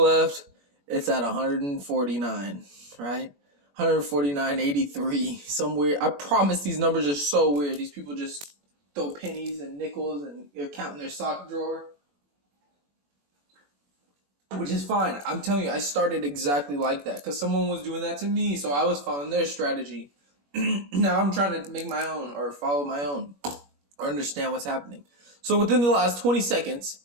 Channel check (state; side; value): late; left; 21 ms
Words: It's at 149, right? 149.83. Some weird. I promise these numbers are so weird. These people just throw pennies and nickels and they're counting their sock drawer. Which is fine. I'm telling you, I started exactly like that because someone was doing that to me, so I was following their strategy. Now I'm trying to make my own or follow my own or understand what's happening. So within the last 20 seconds,